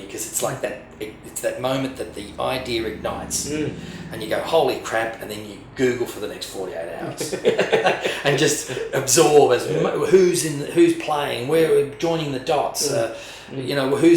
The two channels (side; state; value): both; identical; correlation 1.00